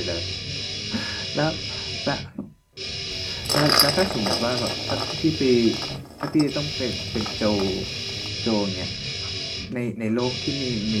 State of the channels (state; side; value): identical; both; correlation 1.00